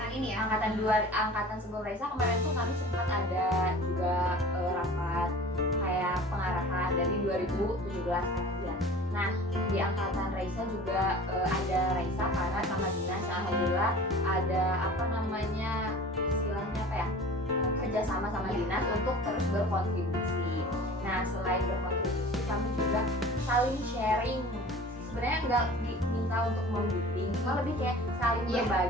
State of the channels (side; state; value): both; normal; correlation 0.41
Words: ini ya? angkatan sebelum Raisa kemarin tuh kami sempat ada juga rapat kayak pengarahan dari 2017 kan ya. Nah di angkatan Raisa juga ada Raisa karena sama dinas, alhamdulillah ada apa namanya istilahnya apa ya, kerjasama sama dinas untuk terus berkontribusi. Nah selain berkontribusi kami juga saling sharing, sebenarnya nggak diminta untuk membimbing, cuma lebih kayak saling Iya,